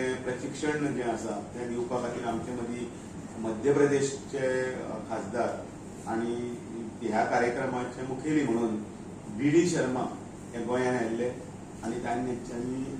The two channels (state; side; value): identical; both; correlation 1.00